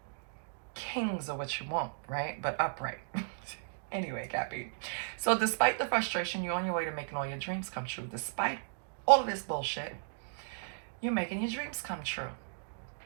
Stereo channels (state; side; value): silent; left; digital silence